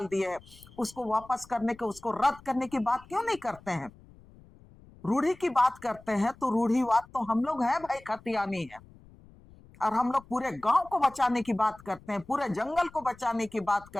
दिए है। उसको वापस करने के, उसको रद्द करने की बात क्यों नहीं करते हैं? रूढ़ी की बात करते हैं तो रूढ़ीवाद तो हम लोग हैं भाई, खतियानी है, और हम लोग पूरे गांव को बचाने की बात करते हैं, पूरे जंगल को बचाने की बात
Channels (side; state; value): left; noise; rumble, 24 dB below the sound